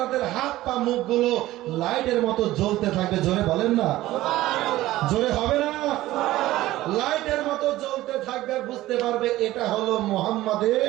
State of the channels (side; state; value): left; quieter; 16.2 dB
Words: হাত পা মুখগুলো লাইটের মতো জ্বলতে থাকবে। জোরে বলেন না, জোরে হবে না? লাইটের মতো জ্বলতে থাকবে, বুঝতে পারবে এটা হলো